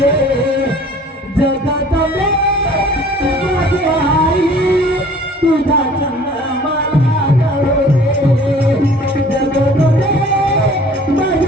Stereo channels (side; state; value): both; normal; correlation 0.50